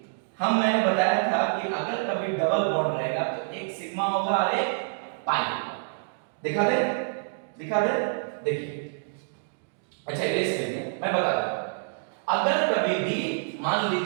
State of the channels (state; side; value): silent; left; digital silence